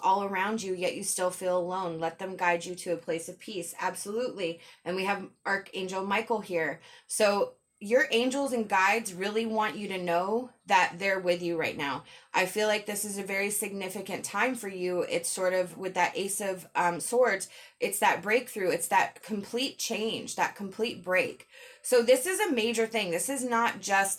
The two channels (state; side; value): identical; both; correlation 1.00